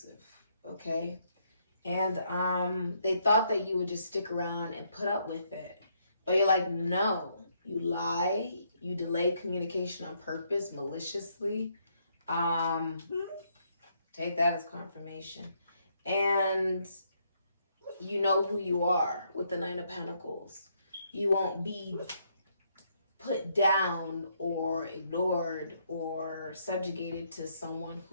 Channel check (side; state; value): both; inverted; correlation -0.73